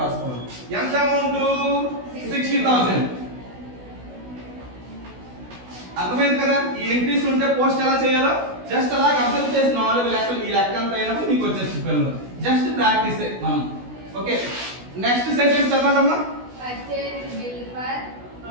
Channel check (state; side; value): late; left; 16 ms